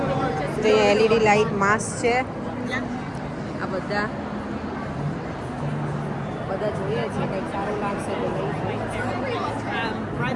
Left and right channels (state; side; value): identical; both; correlation 1.00